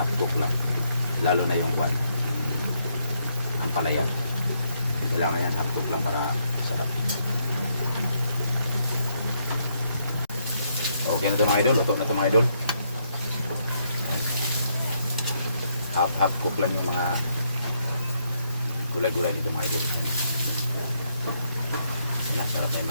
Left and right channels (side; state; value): both; inverted; correlation -0.75